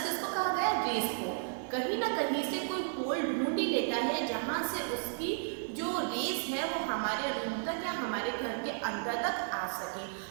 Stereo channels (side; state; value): left; silent; digital silence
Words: किसको कहा गया? रेस को। कहीं ना कहीं से कोई होल ढूंढ ही लेता है जहाँ से उसकी जो रेस है वो हमारे रूम तक या हमारे घर के अंदर तक आ सके।